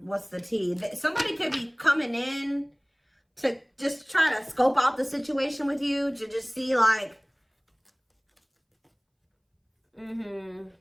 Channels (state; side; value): identical; both; correlation 1.00